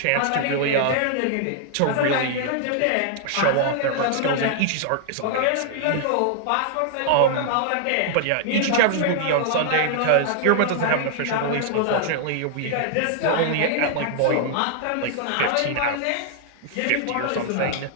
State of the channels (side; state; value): both; different; correlation 0.00